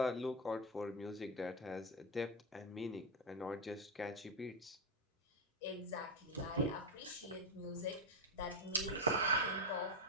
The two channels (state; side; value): normal; both; correlation 0.07